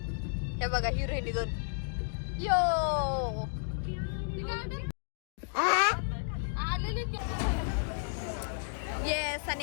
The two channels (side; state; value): right; silent; digital silence